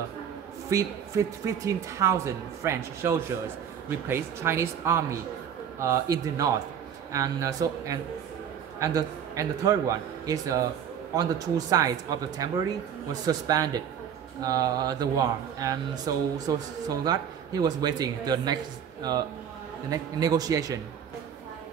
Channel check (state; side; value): quieter; left; 8.4 dB